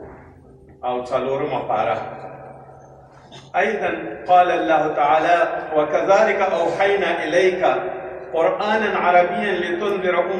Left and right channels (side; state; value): both; identical; correlation 1.00